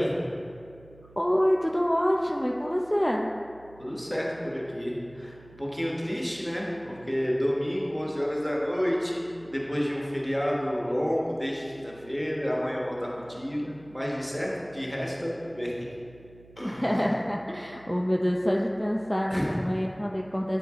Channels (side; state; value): right; noise; hum, 23 dB below the sound